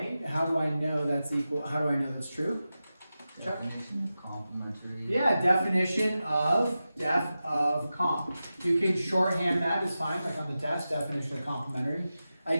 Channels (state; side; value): inverted; both; correlation -0.93